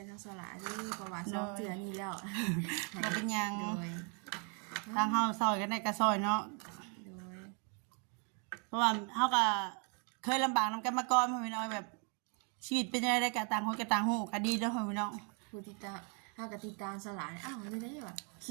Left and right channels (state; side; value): quieter; left; 37.5 dB